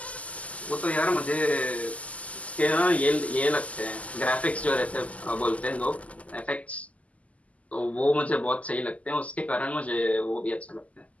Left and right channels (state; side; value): late; right; 0.070 ms